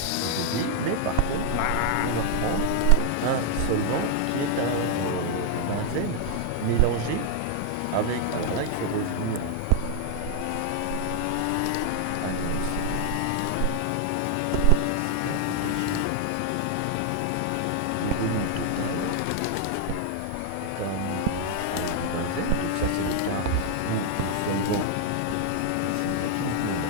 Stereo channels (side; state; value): both; different; correlation 0.00